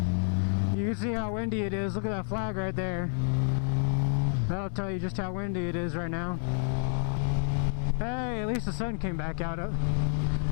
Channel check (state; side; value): silent; right; 58 dB below the other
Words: You can see how windy it is. Look at that flag right there. That'll tell you just how windy it is right now. Hey, at least the sun came back out.